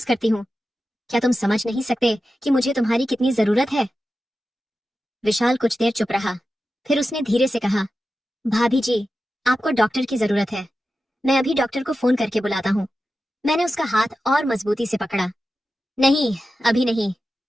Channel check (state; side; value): normal; both; correlation 0.92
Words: करती हूँ। क्या तुम समझ नहीं सकते कि मुझे तुम्हारी कितनी जरूरत है? विशाल कुछ देर चुप रहा, फिर उसने धीरे से कहा, भाभी जी, आपको डॉक्टर की जरूरत है। मैं अभी डॉक्टर को फोन करके बुलाता हूँ। मैंने उसका हाथ और मजबूती से पकड़ा। नहीं, अभी नहीं,